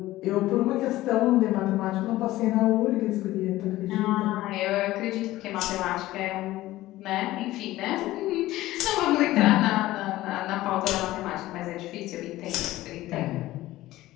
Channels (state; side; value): quieter; right; 16.4 dB